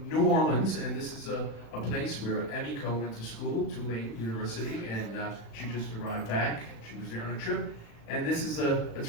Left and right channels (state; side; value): late; right; 35 ms